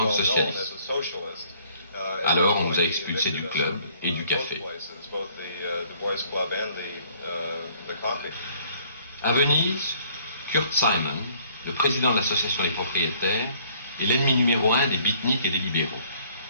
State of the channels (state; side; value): inverted; both; correlation -0.60